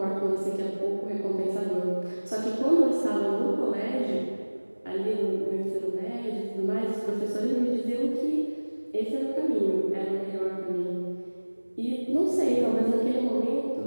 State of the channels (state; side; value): inverted; both; correlation -1.00